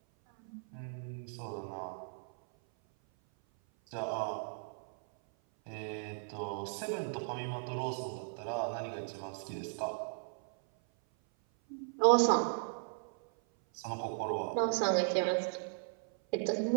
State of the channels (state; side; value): silent; left; 54 dB below the other